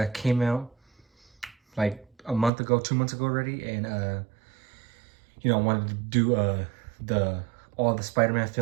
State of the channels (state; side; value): drops out; left; at 2.5 s